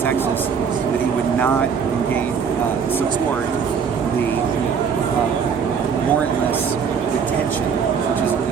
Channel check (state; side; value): quieter; left; 6.6 dB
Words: that he would not support the warrantless detention, which is